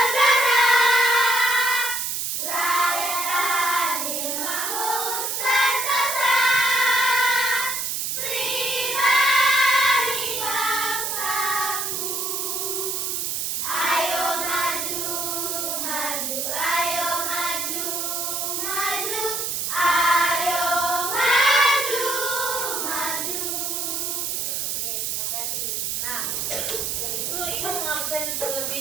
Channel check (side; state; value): right; noise; hiss, 1 dB below the sound